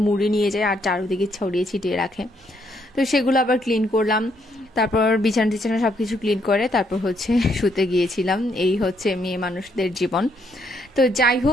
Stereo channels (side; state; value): both; normal; correlation 0.73